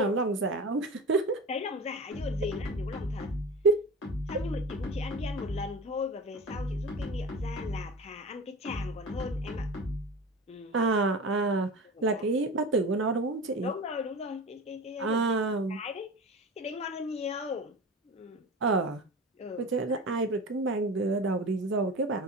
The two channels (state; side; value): normal; both; correlation 0.32